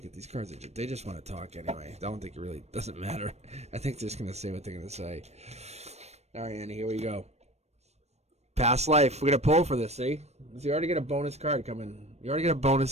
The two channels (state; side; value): late; left; 0.31 ms